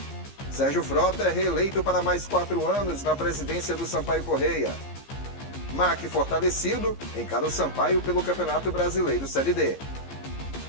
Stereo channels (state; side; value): late; right; 15 ms